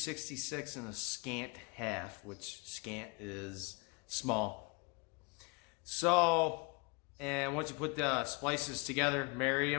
and a scant half, which scant is small. So, and once you put the splices together, marry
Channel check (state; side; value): quieter; right; 30.0 dB